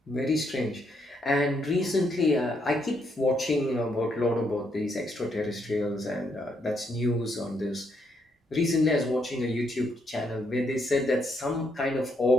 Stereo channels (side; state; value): both; normal; correlation 0.76